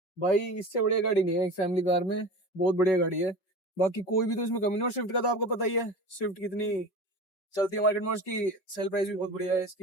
भाई, इससे बढ़िया गाड़ी नहीं है एक फैमिली कार में, बहुत बढ़िया गाड़ी है। बाकी कोई भी तो इसमें कमी नहीं। और स्विफ्ट का तो आपको पता ही है स्विफ्ट कितनी चलती है मार्केट में, उसकी सेल प्राइस भी बहुत बढ़िया है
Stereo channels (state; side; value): late; right; 5.4 ms